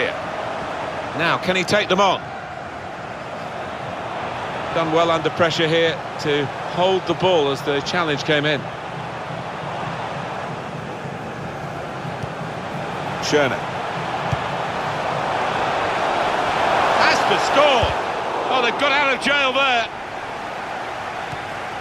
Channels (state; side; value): identical; both; correlation 1.00